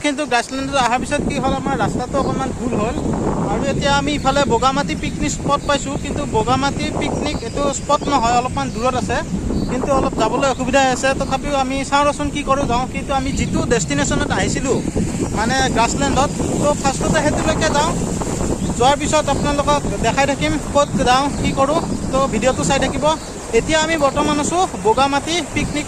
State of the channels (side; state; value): both; identical; correlation 1.00